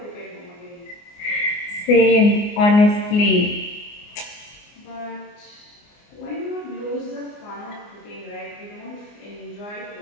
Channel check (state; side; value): late; right; 24 ms